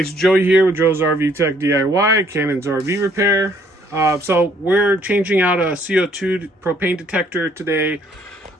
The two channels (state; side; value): normal; both; correlation 0.64